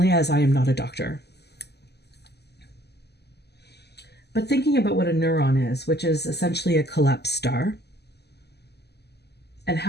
as I am not a doctor. But thinking about what a neuron is, which is essentially a collapsed star, and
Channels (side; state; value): right; late; 0.49 ms